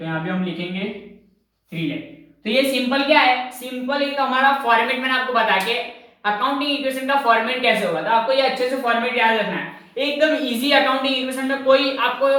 यहाँ पे हम लिखेंगे 3 लाख। तो ये सिंपल क्या है, सिंपल एक हमारा फॉर्मेट मैंने आपको बता के अकाउंटिंग इक्वेशन का फॉर्मेट कैसे होगा, तो आपको ये अच्छे से फॉर्मेट याद रखना है, एकदम इजी, अकाउंटिंग इक्वेशन में कोई आपको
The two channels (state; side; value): identical; both; correlation 1.00